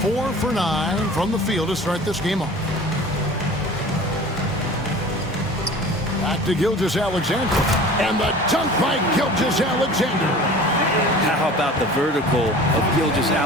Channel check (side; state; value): both; normal; correlation 0.42